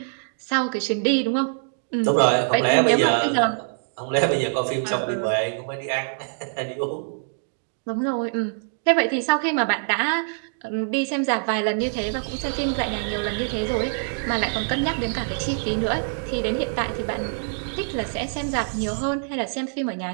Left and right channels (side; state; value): left; silent; digital silence